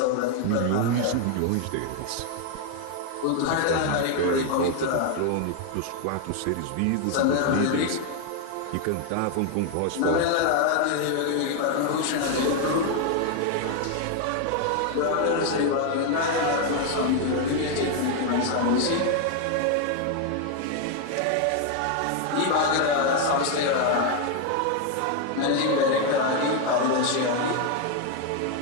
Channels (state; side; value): different; both; correlation 0.01